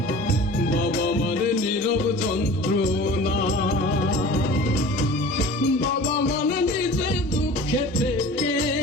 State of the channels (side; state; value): both; normal; correlation 0.41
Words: বাবা মানে নীরব যন্ত্রণা। বাবা মানে নিজে দুঃখে থেকে